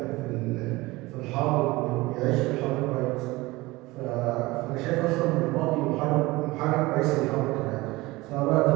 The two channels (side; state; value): left; quieter; 20.8 dB